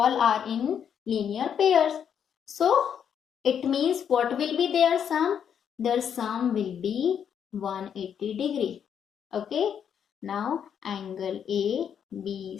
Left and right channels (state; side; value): quieter; right; 8.2 dB